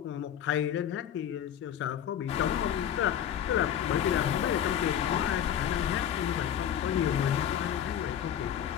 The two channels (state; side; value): quieter; right; 9.8 dB